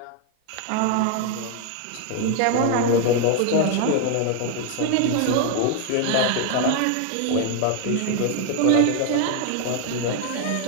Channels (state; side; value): different; both; correlation 0.00